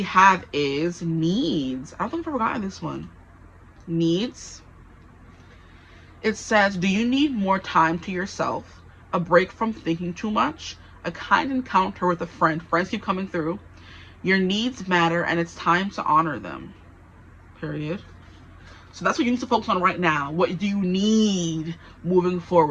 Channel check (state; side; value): identical; both; correlation 1.00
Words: have is needs. I don't think I've ever gotten this one. Needs. It says, do you need more time to yourself, a break from thinking too much, a kind encounter with a friend? Friends keep coming through. Your needs matter, and it's time to honor them. Period. So that's what you need to focus on right now. What do you need moving